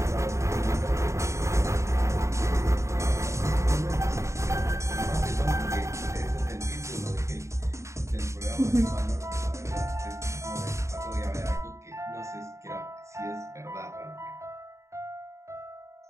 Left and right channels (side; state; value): left; late; 0.14 ms